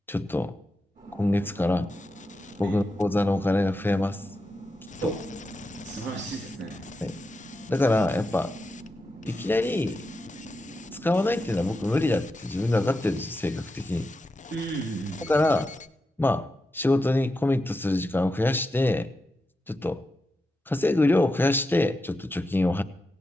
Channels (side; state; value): both; normal; correlation 0.88